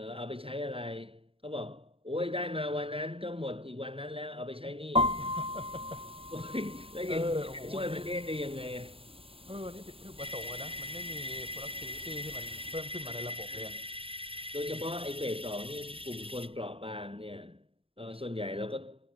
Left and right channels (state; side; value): late; left; 0.27 ms